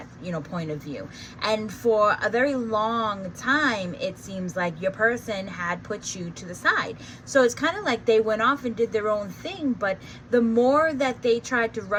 you know, point of view. And for a very long time, it seems like your person had put you to the side. So it's kind of like they went off and did their own thing, but the more that they tried to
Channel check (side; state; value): both; identical; correlation 1.00